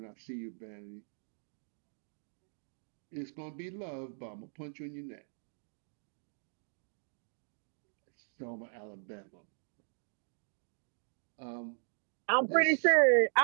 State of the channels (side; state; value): left; silent; digital silence